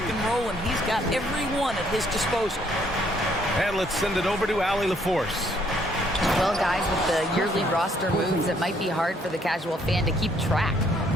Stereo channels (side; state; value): both; normal; correlation 0.67